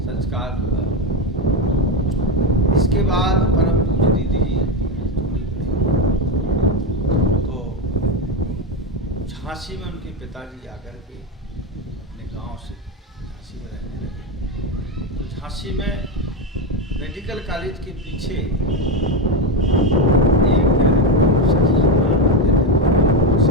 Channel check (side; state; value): both; normal; correlation 0.12